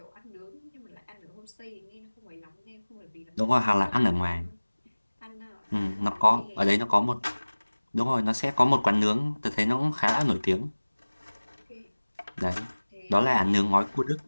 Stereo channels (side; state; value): both; inverted; correlation -1.00